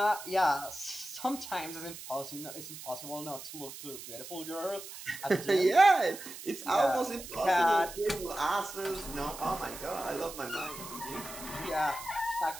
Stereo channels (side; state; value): right; noise; hiss, 12 dB below the sound